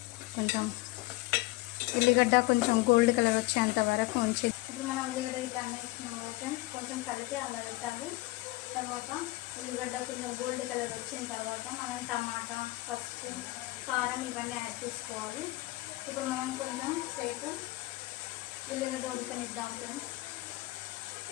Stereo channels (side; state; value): right; quieter; 20.3 dB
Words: కొంచెం ఉల్లిగడ్డ కొంచెం గోల్డ్ కలర్ వచ్చేంత వరకు ఉంచి ఇప్పుడు మనం ఉల్లిగడ్డ ఇట్లా వేసుకున్నాం కదా, కొంచెం కలిపి అలా పెట్టాలి. తర్వాత ఉల్లిగడ్డ కొంచెం గోల్డ్ కలర్ వచ్చిన తర్వాత మనం టమాటా, పసుపు, కారం ఇవన్నీ యాడ్ చేసుకోవాలి. ఇప్పుడు మనం కొంచెం సేపు ఉల్లిగడ్డ ఉడకనిద్దాం ఫ్రెండ్స్.